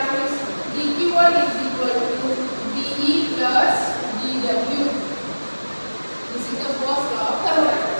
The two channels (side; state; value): both; inverted; correlation -1.00